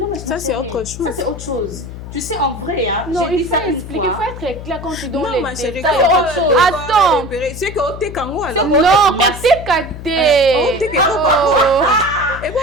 mais ça, c'est autre chose. Ça, c'est autre chose. Tu sais, en vrai, hein, non, il faut expliquer, il faut être clair quand tu donnes les détails. Attends. C'est que tu es kango alors. Non, tu es caté.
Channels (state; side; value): noise; left; hum, 11 dB below the sound